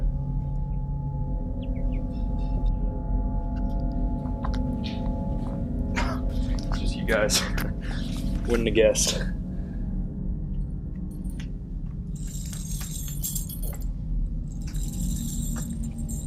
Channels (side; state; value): both; identical; correlation 1.00